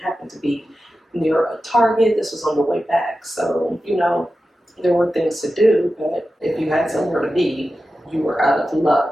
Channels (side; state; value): both; normal; correlation 0.92